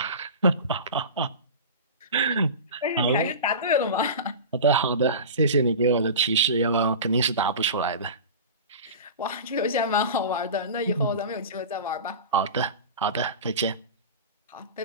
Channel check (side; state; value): both; inverted; correlation -0.31